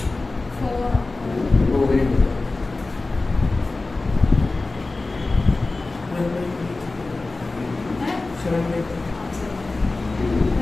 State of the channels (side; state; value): right; quieter; 3.3 dB